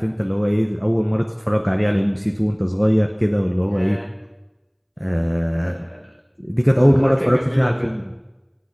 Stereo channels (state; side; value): identical; both; correlation 1.00